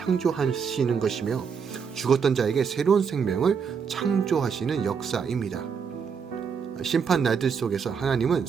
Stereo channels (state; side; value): quieter; left; 6.4 dB